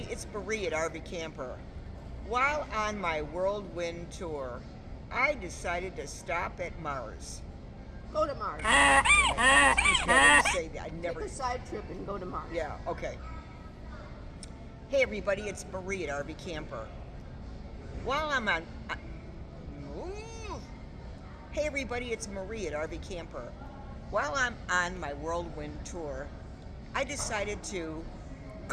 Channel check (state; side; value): identical; both; correlation 1.00